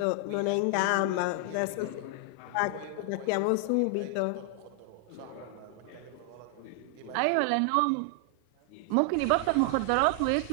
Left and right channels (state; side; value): different; both; correlation 0.00